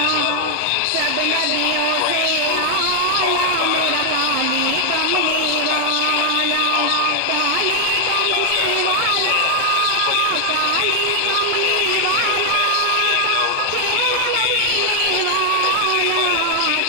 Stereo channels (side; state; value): both; different; correlation 0.00